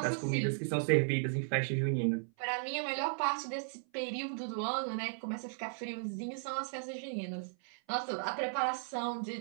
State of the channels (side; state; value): left; silent; 54 dB below the other